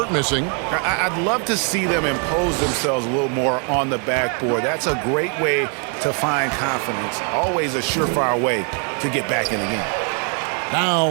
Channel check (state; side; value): quieter; left; 39.5 dB